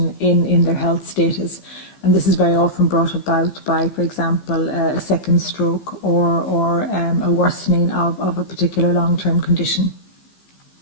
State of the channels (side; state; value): right; late; 15 ms